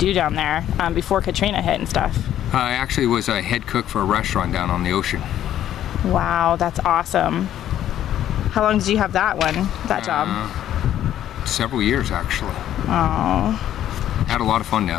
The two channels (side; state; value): right; quieter; 11.6 dB